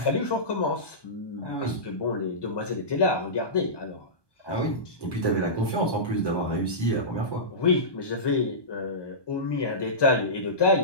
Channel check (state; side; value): late; right; 1.2 ms